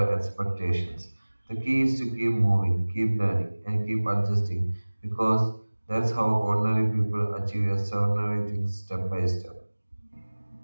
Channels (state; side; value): inverted; both; correlation -1.00